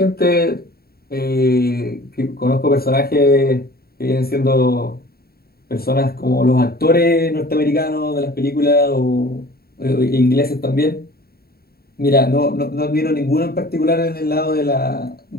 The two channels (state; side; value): late; right; 0.45 ms